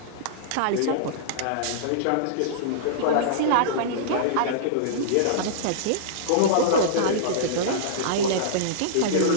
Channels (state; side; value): different; both; correlation -0.03